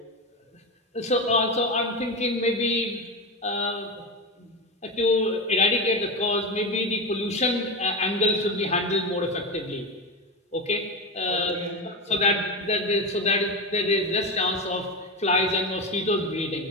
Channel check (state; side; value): normal; both; correlation 0.19